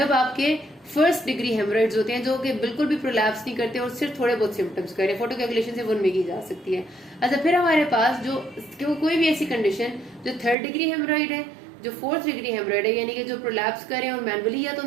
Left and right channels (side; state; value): left; drops out; at 10.6 s